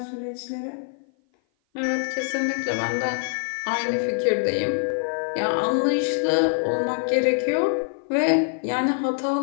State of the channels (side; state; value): right; silent; 56 dB below the other